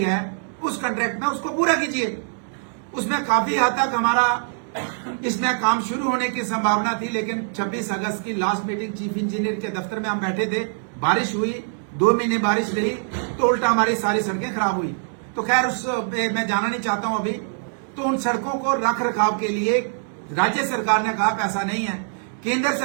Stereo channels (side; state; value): left; silent; 62 dB below the other